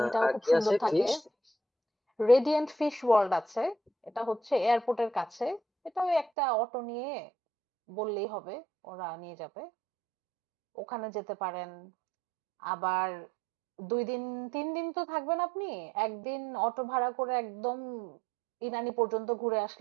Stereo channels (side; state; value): left; drops out; at 6.3 s